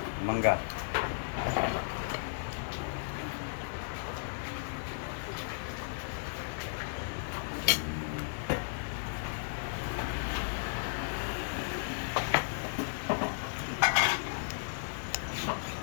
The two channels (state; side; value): silent; right; 55 dB below the other